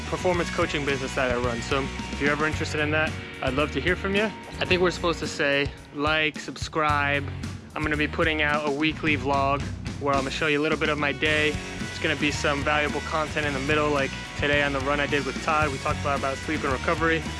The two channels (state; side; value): identical; both; correlation 1.00